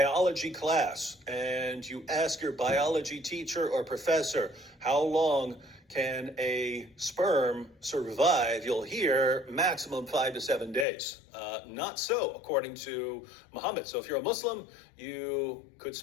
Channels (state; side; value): drops out; right; at 10.9 s